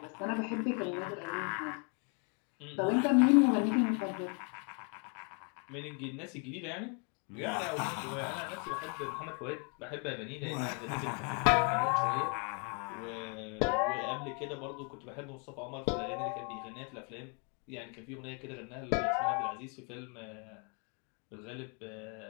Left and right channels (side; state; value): right; quieter; 36.6 dB